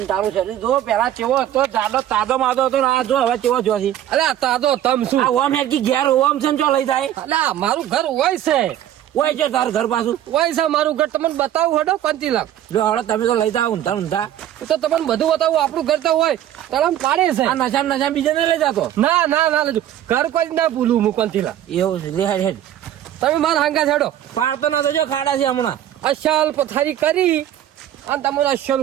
તારું શરીર જો પેલા ચેવો હતો જાડો તાજો માદો હતો ને આ જો હવે ચેવો જોશી અરે તાતો તમ શું આ ઓમ હેડકી ઘેર ઓમ છે ને ચો લઈ જાય અલા મારું ઘર હોય છે ઓય છે તારું ઘર પાછું હોય છે મારું ઘર તમને બતાવું હડો કંતીલા જો હળો તમે તો લઈ જાઓ ઊંધા તો તમને બધું બતાવું આપણું ઘર તો હોય તરમ પાડે છે આ નશા બીજે નહીં લઈ જાતો ના લેજો ઘર કોઈ જ ના ભૂલું હું કંતીલા એવું છે લે હેડ હેડ તમે મારા હાંગા છેડો પાડતો ના તો જો ખાડા છે હમણાં અસલ પથારી કરી અને તમને અસલ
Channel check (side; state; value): left; quieter; 11.7 dB